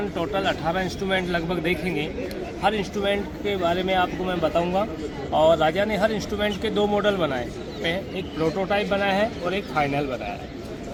टोटल 18 इंस्ट्रूमेंट लगभग देखेंगे। हर इंस्ट्रूमेंट के बारे में आपको मैं बताऊंगा। और राजा ने हर इंस्ट्रूमेंट के 2 मॉडल बनाए, एक प्रोटोटाइप बनाया है और एक फाइनल बनाया है।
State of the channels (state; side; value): identical; both; correlation 1.00